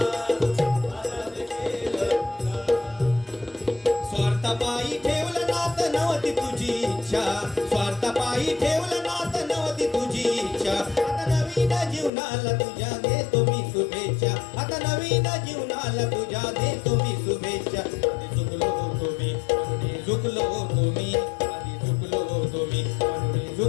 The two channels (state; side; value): drops out; right; at 12.1 s